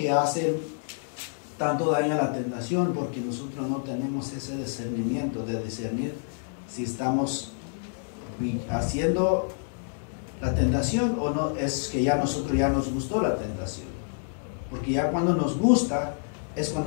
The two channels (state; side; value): silent; right; digital silence